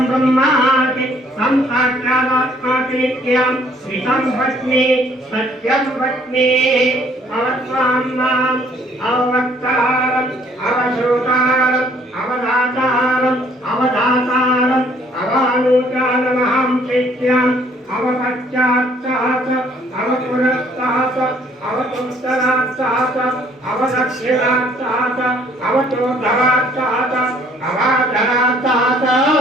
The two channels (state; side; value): normal; both; correlation 0.61